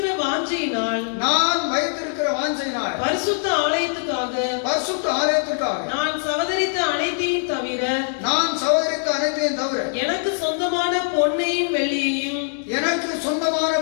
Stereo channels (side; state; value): right; silent; 62 dB below the other